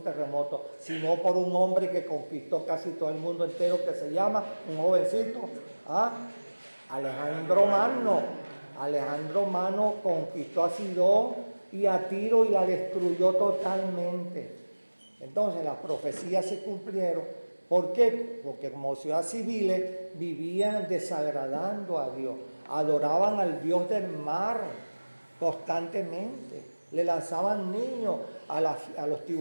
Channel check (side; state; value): both; inverted; correlation -1.00